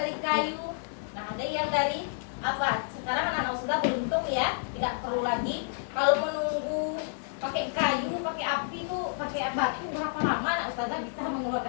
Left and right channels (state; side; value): silent; right; 58 dB below the other